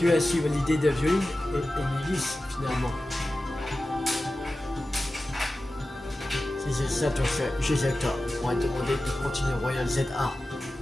as suivi l'idée de Violine et Nivis finalement. Si c'est ça ton fait, Gisector m'aurait demandé de continuer Royal ZA.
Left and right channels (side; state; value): both; normal; correlation 0.94